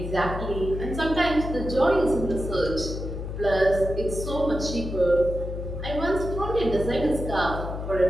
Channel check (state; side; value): noise; left; hum, 6 dB below the sound